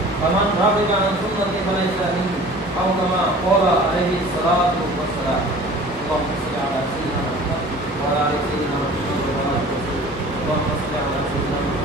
فمن رغب عن سنتي فليس مني أو كما قال عليه الصلاة والسلام اللهم صل على سيدنا محمد وعلى آل سيدنا محمد اللهم صل على سيدنا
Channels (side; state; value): both; normal; correlation 0.44